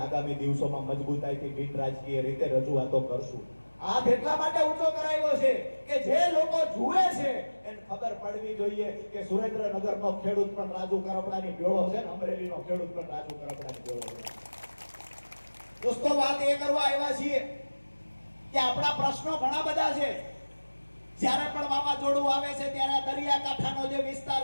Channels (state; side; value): inverted; both; correlation -1.00